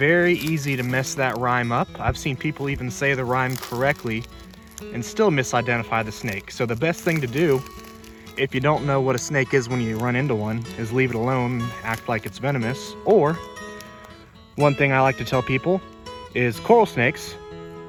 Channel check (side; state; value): both; identical; correlation 1.00